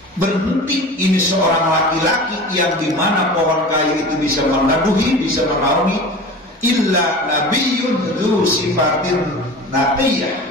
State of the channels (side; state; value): both; normal; correlation 0.36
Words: berhenti ini seorang laki-laki yang dimana pohon kayu itu bisa meneduhi, bisa menaungi, illa nabiyyun dzu sifatin naqiyah,